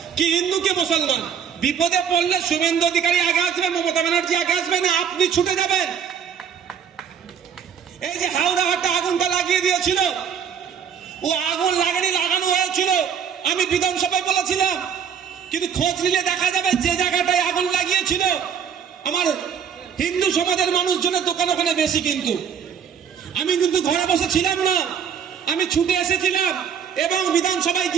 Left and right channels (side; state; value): left; quieter; 7.7 dB